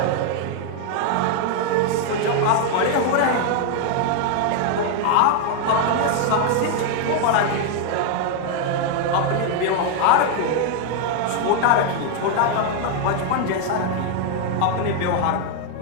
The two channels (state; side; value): different; both; correlation 0.00